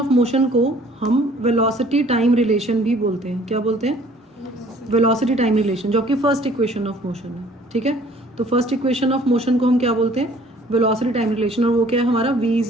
मोशन को हम वेलोसिटी टाइम रिलेशन भी बोलते हैं। क्या बोलते हैं? वेलोसिटी टाइम रिलेशन, जो कि फर्स्ट इक्वेशन ऑफ मोशन है, ठीक है। तो फर्स्ट इक्वेशन ऑफ मोशन को हम क्या बोलते हैं? वेलोसिटी टाइम रिलेशन, और वो क्या है हमारा v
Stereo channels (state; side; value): normal; both; correlation 0.55